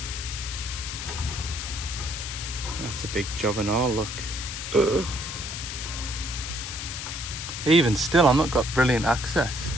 That's a big job and all, look. Ugh. Even still, I've not got brilliant access.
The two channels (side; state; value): left; noise; hiss, 6 dB below the sound